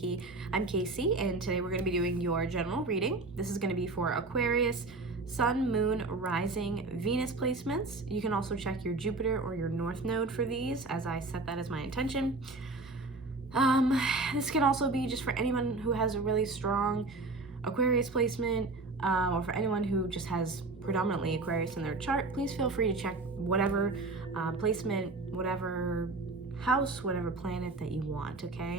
I'm Casey, and today we're going to be doing your general reading. This is going to be for Aquarius, Sun, Moon, Rising, Venus placements. You can also check your Jupiter or your North Node for these, as I set that as my intention. This can also be just for anyone who has a really strong Aquarius placement, or for anyone who just has predominantly Aquarius in their chart. Please feel free to check whatever placement, whatever house, whatever planet that you want,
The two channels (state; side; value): quieter; left; 3.4 dB